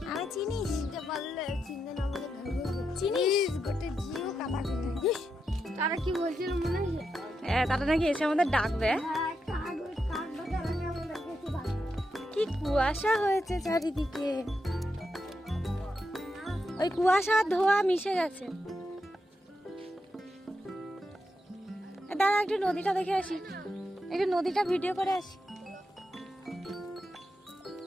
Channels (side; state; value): both; normal; correlation 0.85